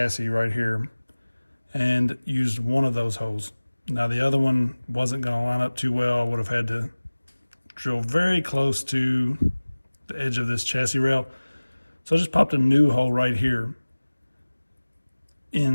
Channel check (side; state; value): both; inverted; correlation -1.00